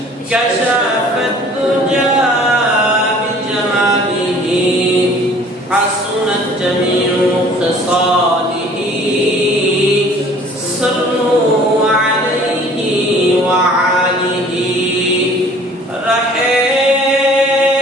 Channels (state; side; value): normal; both; correlation 0.51